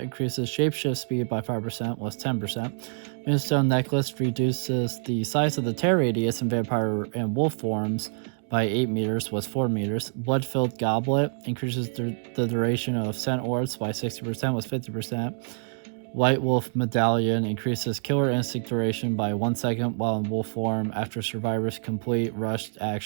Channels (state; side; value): silent; left; digital silence